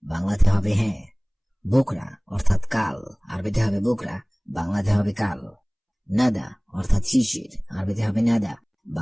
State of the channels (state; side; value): identical; both; correlation 1.00